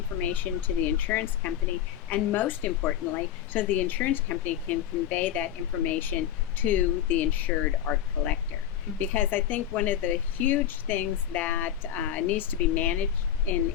to the insurance company, and most importantly, so the insurance company can convey that information to the insured or collector. Mm-hmm. Because I think one of the huge things that needs to be managed in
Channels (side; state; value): right; quieter; 10.5 dB